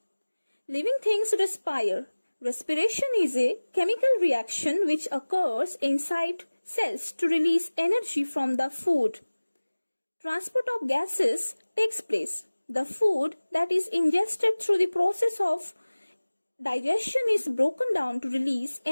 Living things respire. Respiration is a chemical reaction which occurs inside cells to release energy from the food. Transport of gases takes place. The food that is ingested through the process of digestion is broken down to release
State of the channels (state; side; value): inverted; both; correlation -1.00